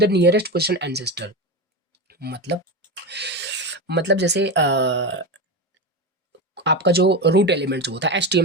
nearest position ancestor. मतलब जैसे आपका जो रूट एलिमेंट जो होता है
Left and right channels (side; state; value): both; normal; correlation 0.18